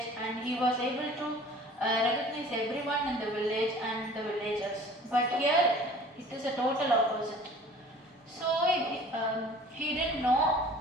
and he was able to recognize everyone in the village and the villagers. But here, it is a total opposite. So he didn't know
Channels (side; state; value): both; normal; correlation 0.47